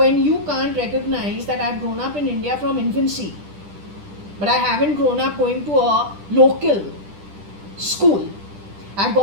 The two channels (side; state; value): left; late; 10 ms